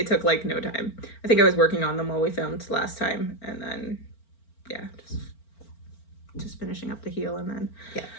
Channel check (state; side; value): late; right; 4.4 ms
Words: took like no time. I think I was working on them while we filmed last time, and then just finishing up the heel, and then